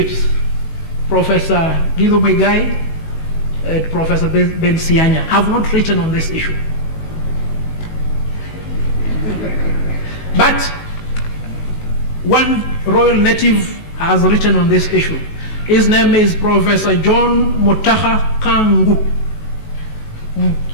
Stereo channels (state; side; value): late; right; 19 ms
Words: Professor Anti-Bbi and Professor Ben Sianya, have not written on this issue. But one royal native has written on this issue. His name is Professor John Mutaha Kangu.